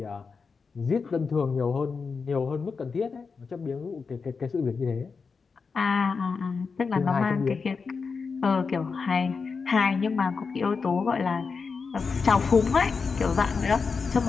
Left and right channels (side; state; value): right; quieter; 5.0 dB